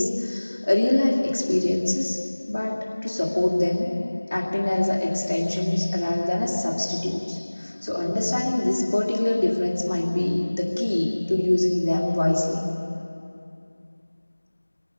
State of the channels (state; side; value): inverted; both; correlation -1.00